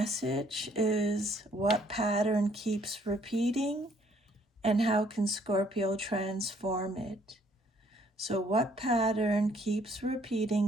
is what pattern keeps repeating and how can Scorpio transform it? So what pattern keeps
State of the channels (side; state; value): both; normal; correlation 0.64